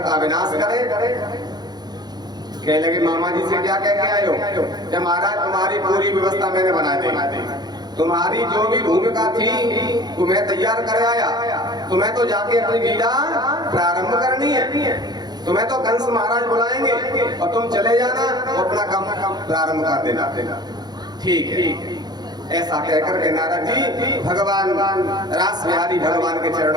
का विनाश करें। कहने लगे मामा जी से क्या कह के आए हो? कि महाराज तुम्हारी पूरी व्यवस्था मैंने बना दी, तुम्हारी जो भी भूमिका थी वो मैं तैयार कर आया। तुम्हें तो जाके अपनी लीला प्रारंभ करनी है, तुम्हें तो कंस महाराज बुलाएंगे और तुम चले जाना और अपना काम प्रारंभ कर देना। ठीक है, ऐसा कहकर के नारद जी भगवान रास बिहारी भगवान के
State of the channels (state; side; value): late; left; 0.20 ms